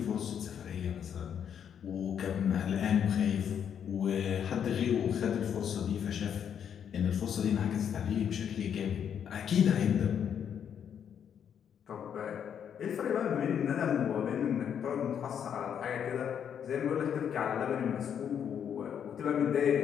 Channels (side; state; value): right; quieter; 8.4 dB